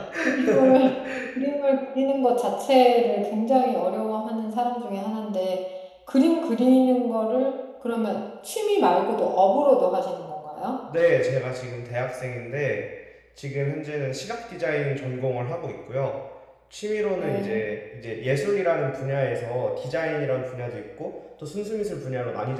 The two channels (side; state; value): both; identical; correlation 1.00